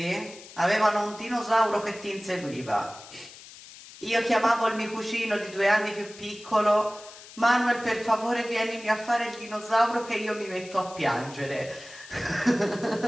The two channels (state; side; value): noise; left; hiss, 18 dB below the sound